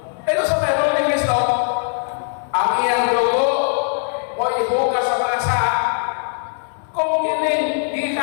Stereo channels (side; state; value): right; silent; digital silence